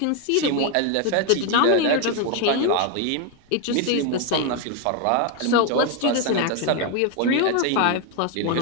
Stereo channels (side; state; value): both; different; correlation 0.01